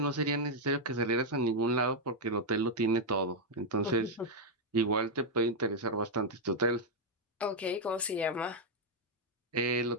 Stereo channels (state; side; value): normal; both; correlation -0.01